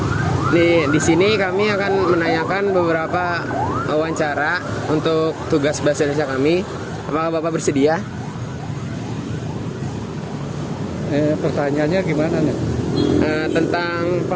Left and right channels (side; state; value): both; identical; correlation 1.00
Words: Di sini kami akan menanyakan beberapa wawancara untuk tugas bahasa Indonesia kami. Apakah Bapak bersedia? Pertanyaannya gimana nih? Tentang